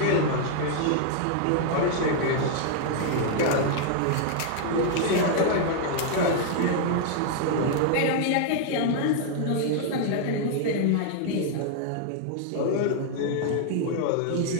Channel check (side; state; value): both; different; correlation -0.01